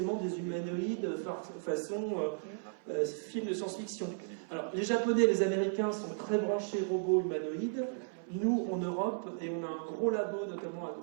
des humanoïdes façon film de science-fiction. Alors, les Japonais et les Américains sont très branchés robots humanoïdes. Nous, en Europe, et on a un gros labo, notamment à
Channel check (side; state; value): left; silent; 55 dB below the other